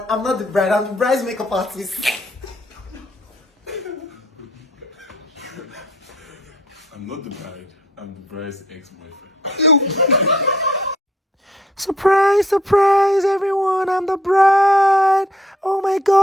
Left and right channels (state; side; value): normal; both; correlation 0.63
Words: I'm not the bride, I'm the bride's makeup artist. I'm not the bride. I'm the bride's ex-boyfriend. Surprise, surprise, everyone. I'm the bride. Oh my